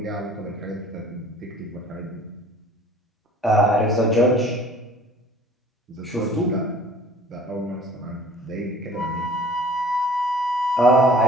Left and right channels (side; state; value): both; normal; correlation 0.49